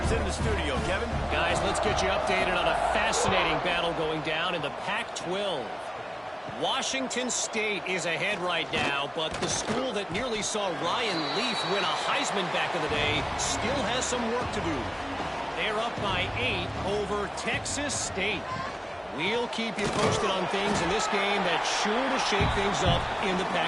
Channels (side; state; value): both; identical; correlation 1.00